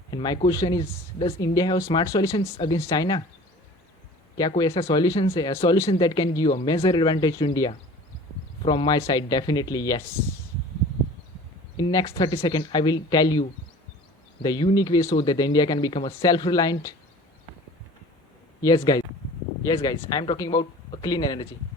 And my question is, does India have smart solutions against China? क्या कोई ऐसा solutions है, a solution that can give a major advantage to India? From my side, definitely yes. In next 30 seconds, I will tell you the unique way so that India can become a self-reliant. Yes, guys. Yes, guys. I am talking about a clean energy.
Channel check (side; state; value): both; normal; correlation 0.43